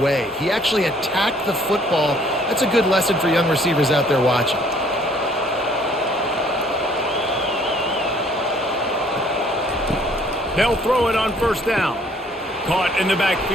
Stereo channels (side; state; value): both; normal; correlation 0.60